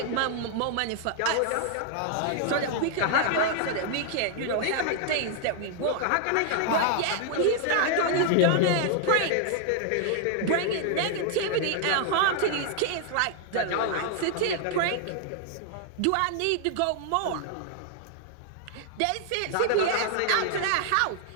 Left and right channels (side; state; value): both; different; correlation 0.00